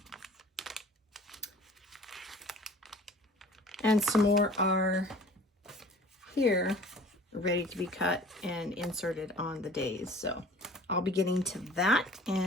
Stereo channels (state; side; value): normal; both; correlation 0.47